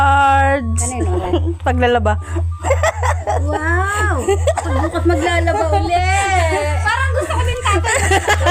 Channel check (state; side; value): identical; both; correlation 1.00